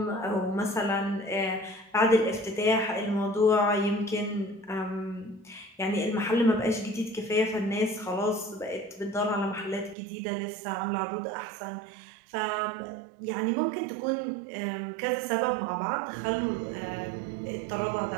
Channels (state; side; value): drops out; left; at 10.0 s